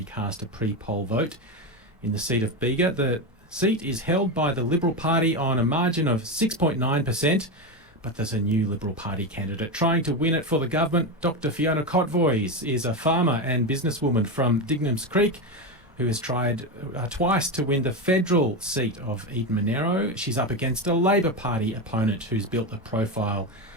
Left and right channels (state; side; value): normal; both; correlation 0.15